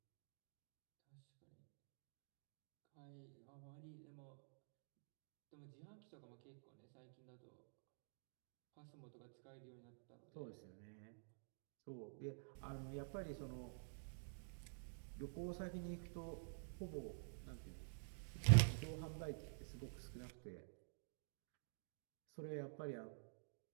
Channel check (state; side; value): silent; left; digital silence